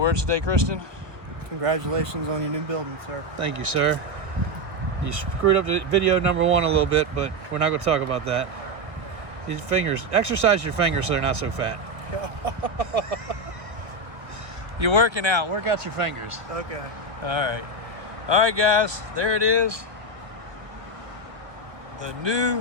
today, Kristen? Congratulations on your new building, sir. Thank you, sir. You screwed up the video number 1 a little bit, but we're not gonna talk about that. These fingers, exercise your fingers so they're not so fat. You're working out, work out your fingers. Okay. All right guys, there it is. The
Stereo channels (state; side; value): late; left; 1.1 ms